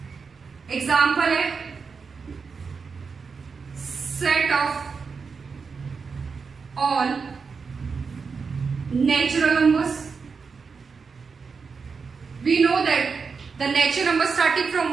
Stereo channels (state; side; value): quieter; left; 5.2 dB